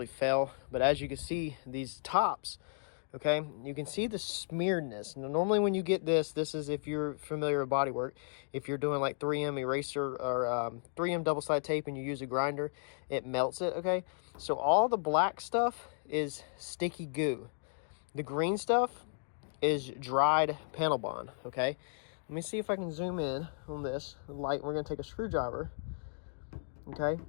fail. But as you can see, these tops, okay, you can see the smearedness. Now, normally when you get this is, if you're familiar with bodywork, if you're doing like 3M eraser or 3M double-sided tape and you use a grinder, it melts it, okay? So all the black stuff is sticky goo. The green stuff is dried panel bond, okay? Let me see if I can zoom in on this light. We're gonna take a screwdriver, okay?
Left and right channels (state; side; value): silent; right; digital silence